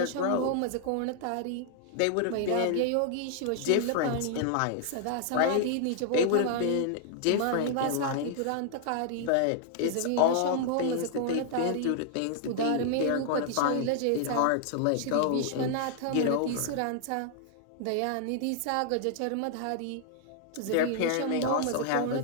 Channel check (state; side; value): different; both; correlation -0.01